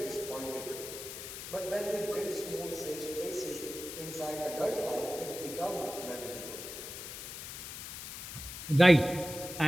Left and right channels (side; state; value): left; noise; hiss, 9 dB below the sound